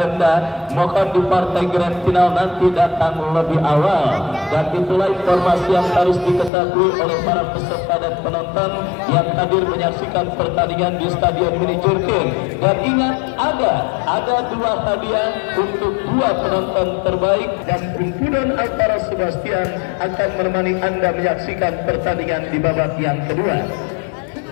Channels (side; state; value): right; drops out; at 6.5 s